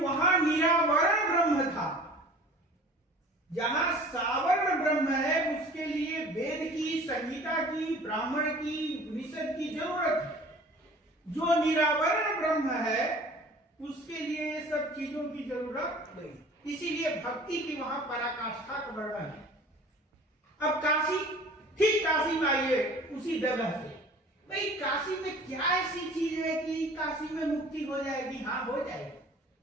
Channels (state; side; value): normal; both; correlation 0.46